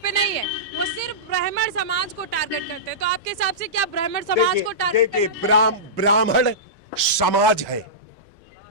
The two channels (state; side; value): normal; both; correlation -0.18